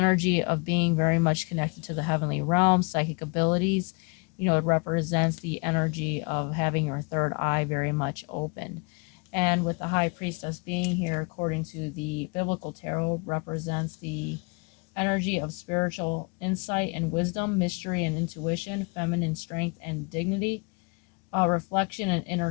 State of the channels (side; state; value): right; quieter; 31.9 dB